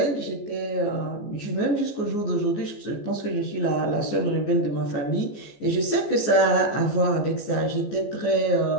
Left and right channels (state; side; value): late; right; 14 ms